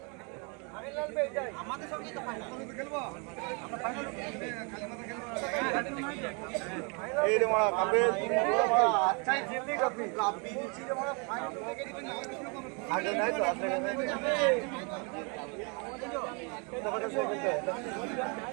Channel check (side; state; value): left; quieter; 34.0 dB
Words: আমাদের সঙ্গে তো ফাইনাল খেলবো আমরা ফাইনাল এই রে মারা কাপে আচ্ছাই জিতলি কাপি কাপি নিচে রে মারা ফাইনাল থেকে দিবেন আগে নাই তো আগে নাই তো কথা সব বলতে